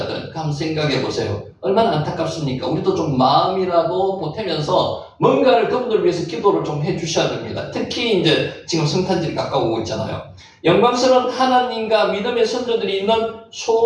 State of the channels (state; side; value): identical; both; correlation 1.00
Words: 한번 생각해 보세요. 얼마나 안타깝습니까? 우리도 좀 마음이라도 보태면서 뭔가를 그분들 위해서 기도를 좀 해주셔야 됩니다. 특히 이제 지금 성탄절이 가까워오고 있잖아요. 영광스러운 하나님과 믿음의 선조들이 있는